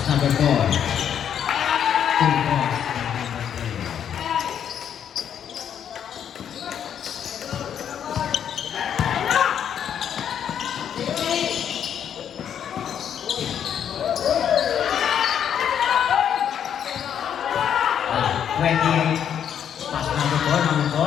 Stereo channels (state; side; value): quieter; right; 8.9 dB